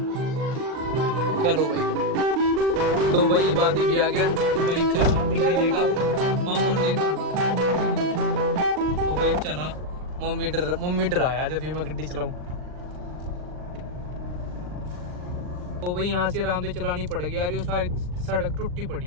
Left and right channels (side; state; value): left; late; 39 ms